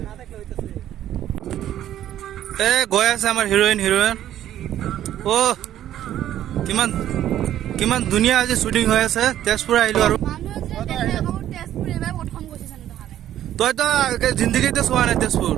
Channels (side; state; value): left; quieter; 11.9 dB